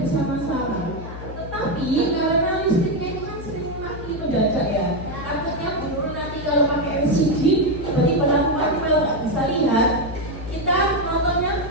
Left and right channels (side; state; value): left; noise; hum, 10 dB below the sound